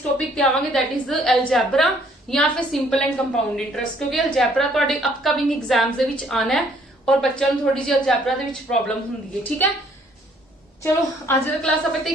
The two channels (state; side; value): normal; both; correlation 0.63